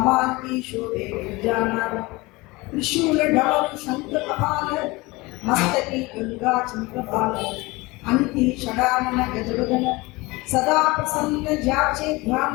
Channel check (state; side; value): quieter; right; 22.9 dB